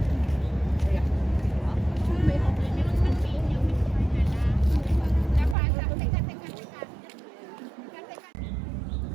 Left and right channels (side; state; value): left; drops out; at 5.6 s